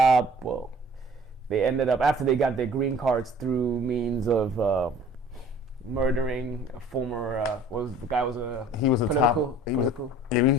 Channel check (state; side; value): normal; both; correlation 0.50